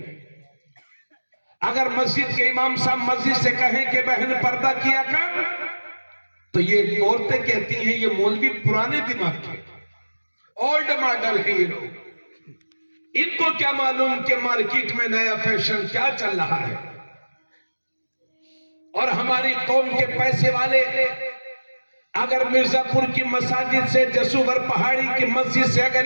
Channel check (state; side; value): inverted; both; correlation -1.00